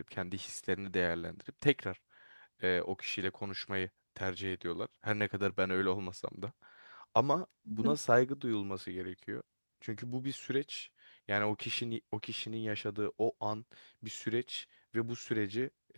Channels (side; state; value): both; inverted; correlation -1.00